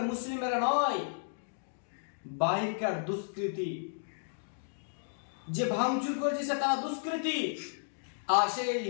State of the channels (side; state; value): right; silent; digital silence